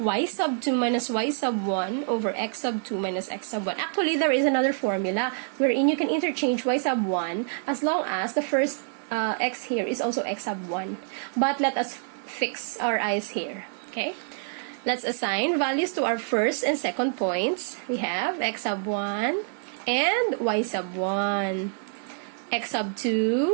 sub 2 minus Y sub 1 over X sub 2 minus X sub 1. Actually, there is another formula wherein you can interchange Y sub 1 as long as the first X here is also X sub 1. But let us fix our eyes here. Okay? Let's assign values to our first and second points. We have X sub 1 and Y sub 1. X sub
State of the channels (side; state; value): left; silent; digital silence